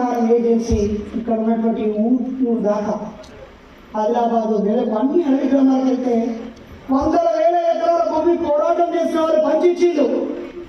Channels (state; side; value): identical; both; correlation 1.00